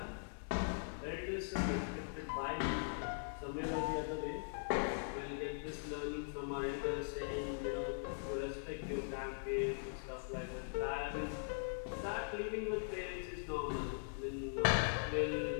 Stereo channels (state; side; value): silent; right; digital silence